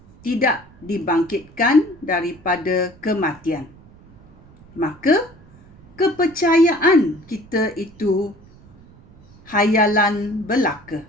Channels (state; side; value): noise; right; rumble, 25 dB below the sound